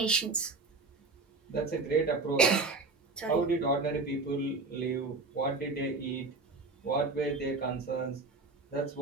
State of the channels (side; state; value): left; quieter; 3.7 dB